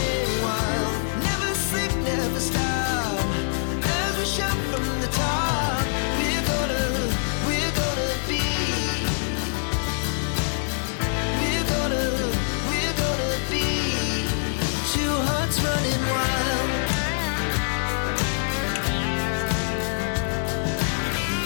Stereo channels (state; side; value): silent; right; digital silence